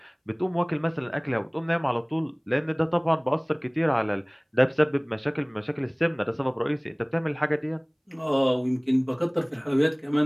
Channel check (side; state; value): both; identical; correlation 1.00